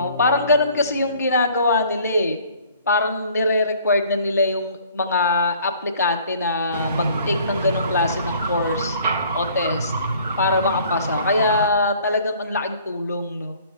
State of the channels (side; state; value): both; inverted; correlation -0.55